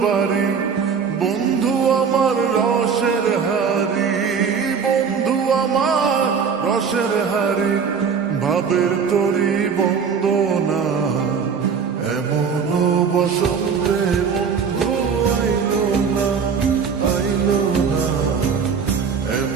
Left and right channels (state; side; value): quieter; left; 6.2 dB